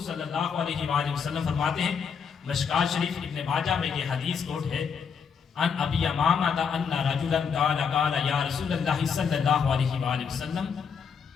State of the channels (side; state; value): right; quieter; 6.5 dB